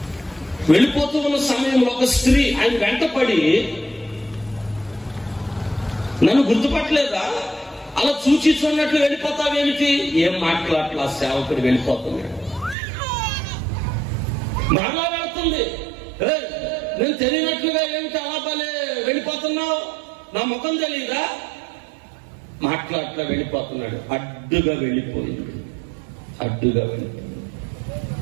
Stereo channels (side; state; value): left; drops out; at 12.8 s